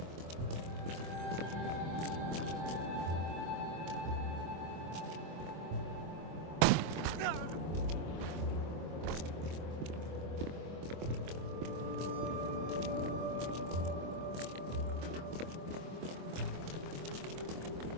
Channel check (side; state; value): left; late; 24 ms